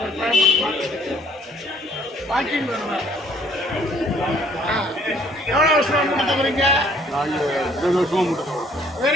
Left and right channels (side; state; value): both; normal; correlation 0.61